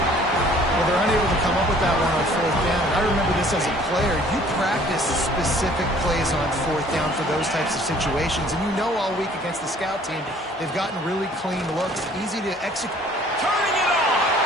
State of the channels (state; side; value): normal; both; correlation 0.55